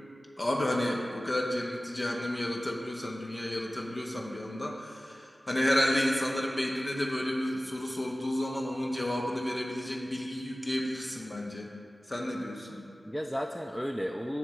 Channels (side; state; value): both; normal; correlation 0.96